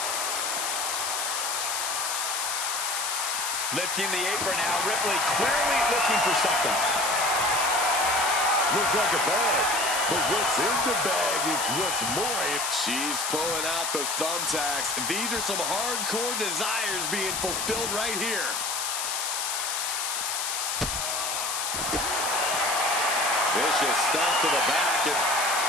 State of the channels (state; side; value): noise; left; hiss, 1 dB below the sound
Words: Lifting the apron now. Ripley clearly looking for something. Looked like a bag, but what's in the bag is what's more. She's pulling out the thumbtacks. These are some hardcore desires being fulfilled right here. Vicious stomp to the back and